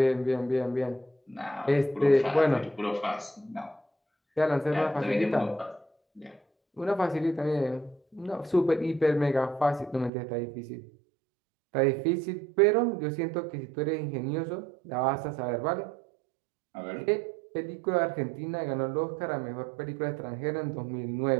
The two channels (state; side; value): drops out; left; at 10.1 s